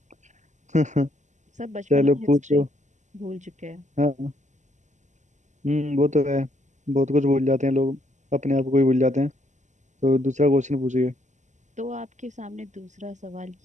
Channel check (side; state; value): left; late; 0.34 ms